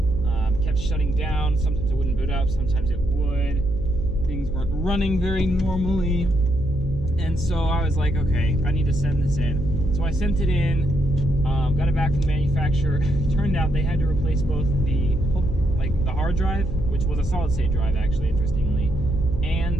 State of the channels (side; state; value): left; noise; hum, 11 dB below the sound